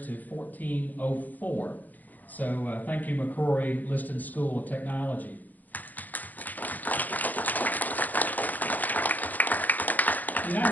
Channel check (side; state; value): right; late; 0.082 ms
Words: to $1,404. So thank you, McCrory Liston School of Technology. The